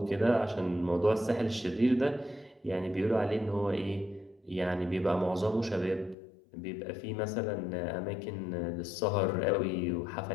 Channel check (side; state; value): right; drops out; at 6.2 s